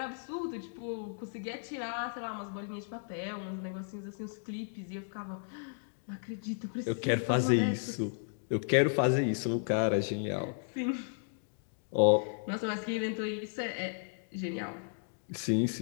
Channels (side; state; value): right; silent; digital silence